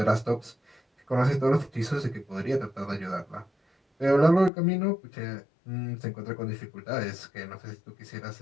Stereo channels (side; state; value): right; drops out; at 4.5 s